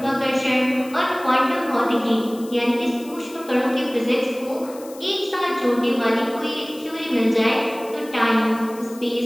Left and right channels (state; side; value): noise; left; hiss, 20 dB below the sound